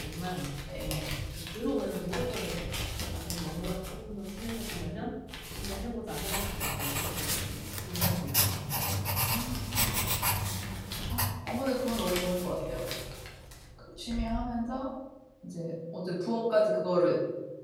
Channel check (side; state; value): both; identical; correlation 1.00